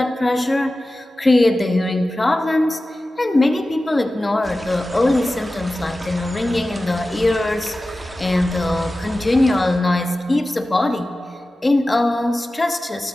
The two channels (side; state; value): both; normal; correlation 0.95